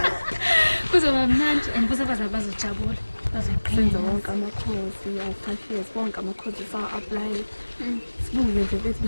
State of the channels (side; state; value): both; inverted; correlation -1.00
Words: Kuzoba mnandi and futhi bazojabula. Senza wonke amakhosi ya 5 years wonke amakhosi sa-apply. Sibuke nje bethi